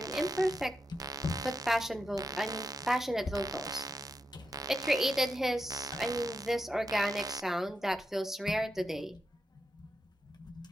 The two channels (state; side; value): normal; both; correlation 0.86